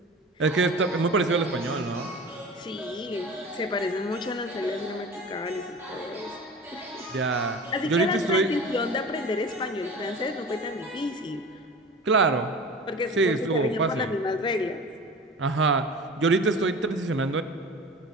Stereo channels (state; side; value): normal; both; correlation 0.36